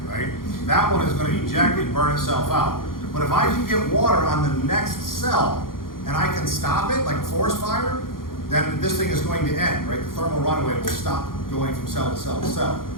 right? That one is going to eject and burn itself out. But if I can get water on the next cell, and I can stop it, like a forest fire, then this thing is going to end, right? The thermal runaway will stop going from cell to cell to cell.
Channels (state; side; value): late; right; 0.91 ms